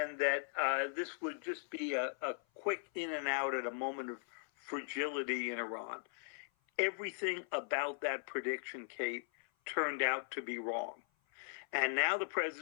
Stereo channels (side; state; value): right; silent; 52 dB below the other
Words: that this would just be a quick in and out at a moment of fragility in Iran. Everything about that prediction, Kate, turned out to be wrong. And now the